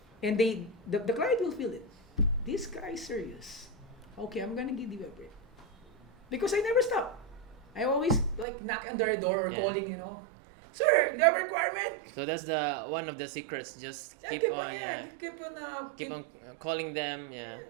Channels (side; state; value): left; drops out; at 8.5 s